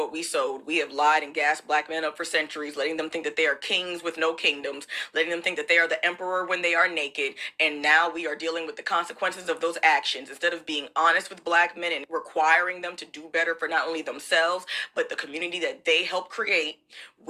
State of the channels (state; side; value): identical; both; correlation 1.00